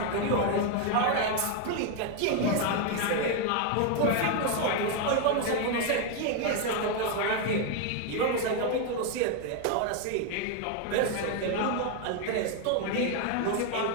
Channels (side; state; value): both; different; correlation 0.01